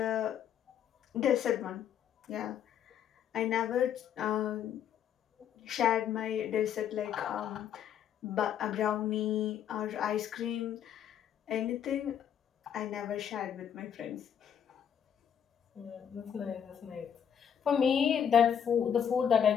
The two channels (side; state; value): right; quieter; 8.7 dB